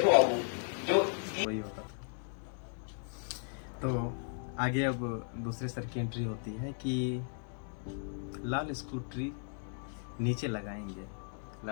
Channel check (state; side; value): silent; right; 54 dB below the other